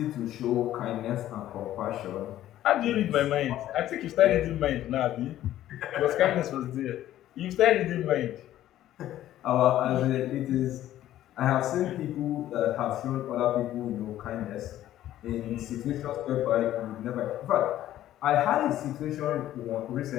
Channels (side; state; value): right; quieter; 13.1 dB